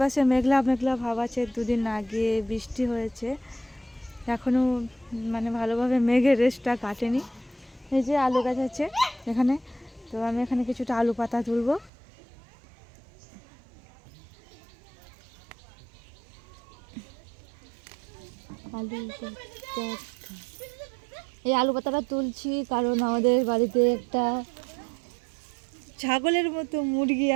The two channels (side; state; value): left; drops out; at 11.9 s